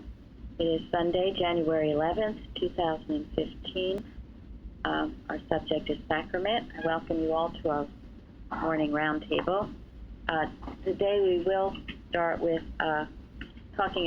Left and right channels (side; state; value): both; identical; correlation 1.00